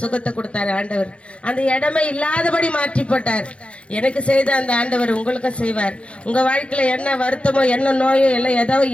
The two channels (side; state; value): right; late; 0.060 ms